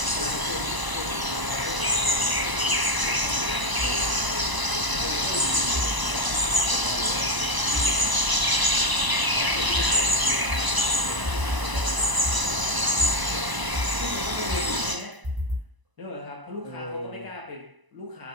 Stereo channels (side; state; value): left; late; 1.0 ms